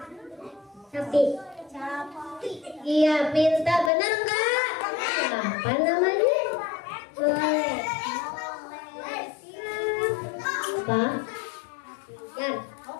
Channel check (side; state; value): right; drops out; at 3.9 s